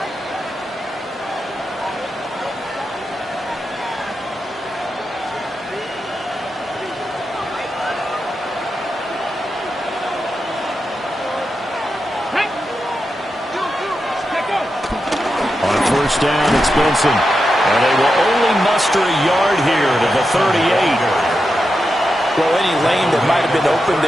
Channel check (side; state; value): both; normal; correlation 0.88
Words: Down, it's Benson. And they will only muster a yard here to the 38. Well, any lane that might have been open